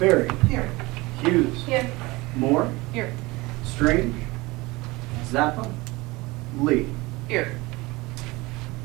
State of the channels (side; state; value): left; quieter; 22.3 dB